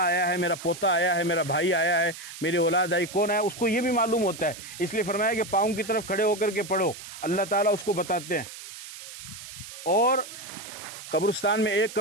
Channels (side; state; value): right; noise; hiss, 13 dB below the sound